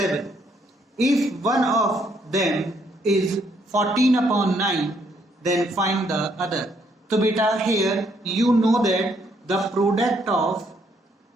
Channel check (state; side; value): normal; both; correlation 0.70